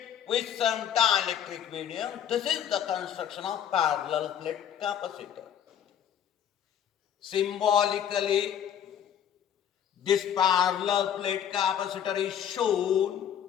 with some dielectric medium. This is the construction of parallel plate capacitor. Symbolically, this parallel plate capacitor is shown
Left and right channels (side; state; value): right; quieter; 9.4 dB